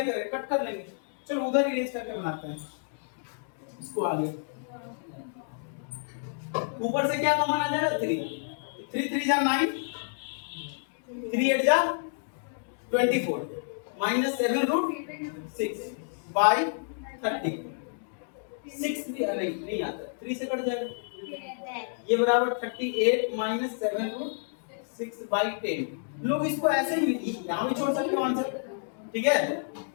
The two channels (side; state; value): right; silent; digital silence